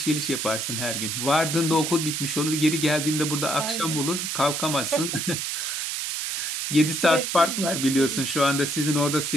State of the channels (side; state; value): right; noise; hiss, 2 dB below the sound